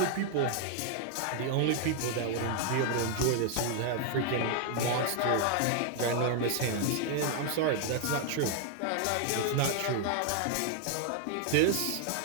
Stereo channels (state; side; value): different; both; correlation 0.00